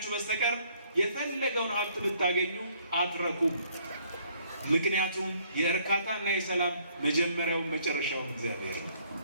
በስተቀር የፈለገውን ሀብት ብታገኙ አትረኩም። ምክንያቱም የእርካታና የሰላም መጀመሪያውን መጨረሻውን እግዚአብሔር ነው።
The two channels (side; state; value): both; inverted; correlation -0.64